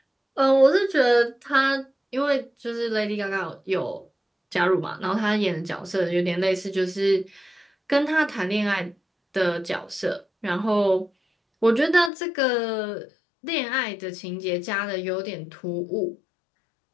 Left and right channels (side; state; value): right; drops out; at 12.1 s